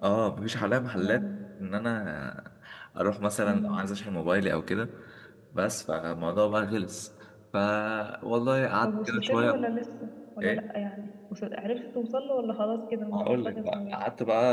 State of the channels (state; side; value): identical; both; correlation 1.00